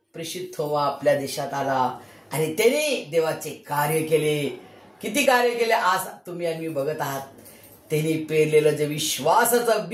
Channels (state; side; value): identical; both; correlation 1.00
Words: प्रेषित थोमा आपल्या देशात आला आणि त्याने देवाचे कार्य केले. किती कार्य केले आज तुम्ही आणि मी बघत आहात. त्यांनी पेरलेलं जे विश्वासाचं